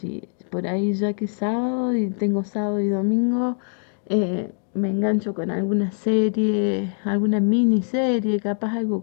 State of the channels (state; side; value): silent; right; 63 dB below the other